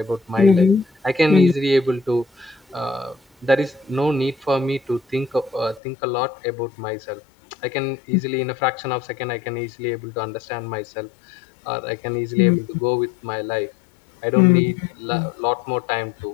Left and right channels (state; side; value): drops out; right; at 5.8 s